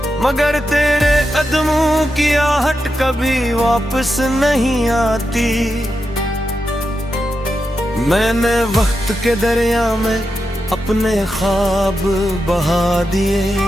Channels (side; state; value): both; normal; correlation 0.88